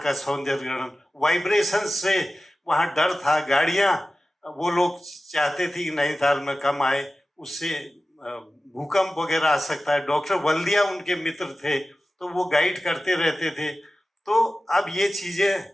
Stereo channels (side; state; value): both; normal; correlation 0.95